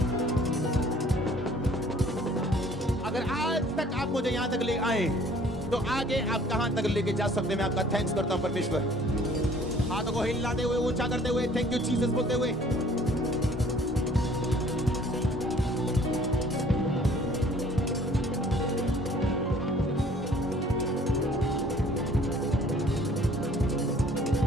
अगर आज तक आप मुझे यहां तक ले आए तो आगे आप कहां तक लेके जा सकते हैं? मैं आपका थैंक्स करता हूं परमेश्वर। हाथों को हिलाते हुए, ऊंचा करते हुए, थैंक यू जीसस बोलते हुए।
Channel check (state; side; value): normal; both; correlation 0.55